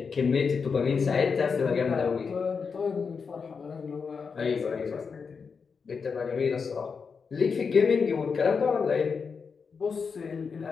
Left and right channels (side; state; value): right; quieter; 5.5 dB